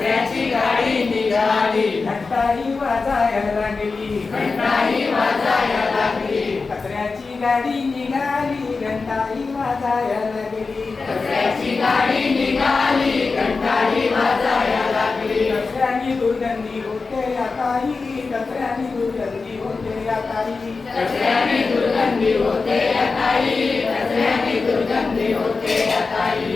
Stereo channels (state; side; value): quieter; right; 4.3 dB